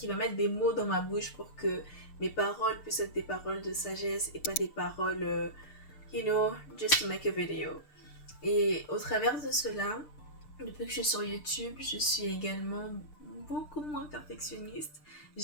mettre des mots dans ma bouche pour que mes paroles puissent être des paroles de sagesse et pas des paroles, you know, just to make a video. Et au travers de cela, depuis que je suis sur YouTube, je suis également beaucoup moins perfectionniste.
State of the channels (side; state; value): right; late; 6.7 ms